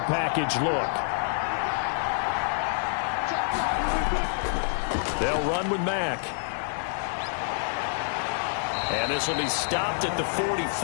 package look. They'll run with Mack. And this will be stopped at the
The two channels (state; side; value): silent; right; digital silence